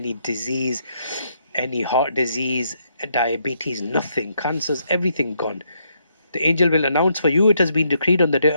disease, any heart disease, diabetes, nothing, cancers, everything gone. The angel will announce, for you it has been decreed on the day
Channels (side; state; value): both; inverted; correlation -0.75